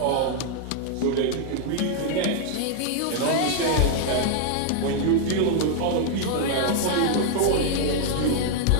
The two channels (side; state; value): both; different; correlation 0.00